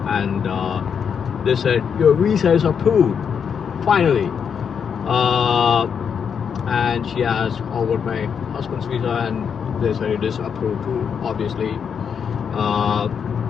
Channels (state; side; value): quieter; right; 7.1 dB